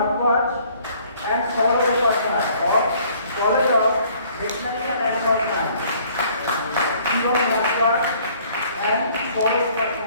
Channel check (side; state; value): both; inverted; correlation -0.59